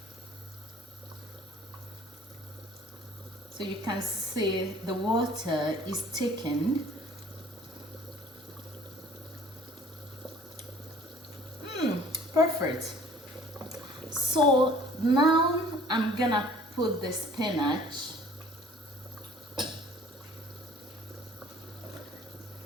So you can see the water is thickened. Perfect. So now I'm gonna put the spinach.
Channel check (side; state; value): both; normal; correlation 0.52